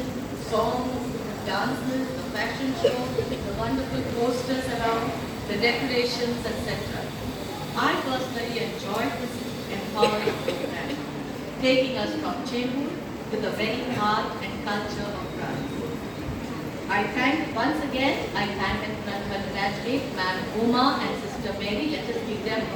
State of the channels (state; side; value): identical; both; correlation 1.00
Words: songs, dances, the fashion show, the wonderful posters around, the decorations, etc. I personally enjoyed this empowering program, taking us from Chembur to the very heart and culture of France. I thank once again, I thank and congratulate Ma'am Uma and Sister Mary. Let us give them